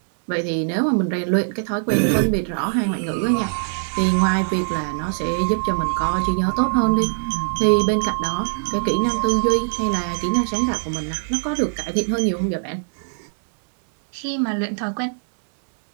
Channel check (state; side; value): silent; left; digital silence